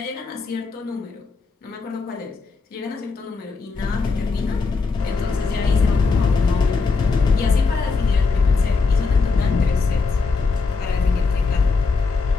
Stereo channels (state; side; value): quieter; right; 4.4 dB